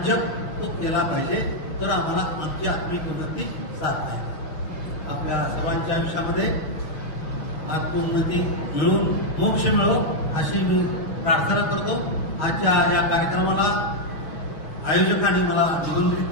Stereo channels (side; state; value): right; late; 6.3 ms